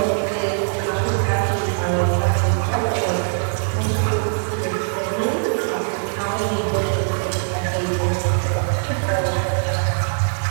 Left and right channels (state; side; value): silent; left; digital silence